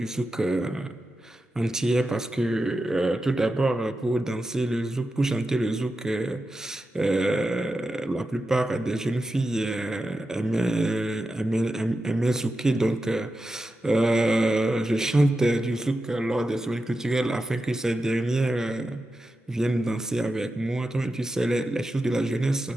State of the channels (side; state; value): both; normal; correlation 0.90